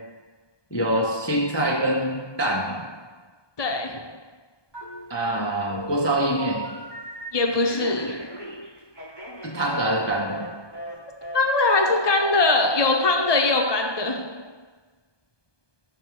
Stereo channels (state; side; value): late; right; 1.2 ms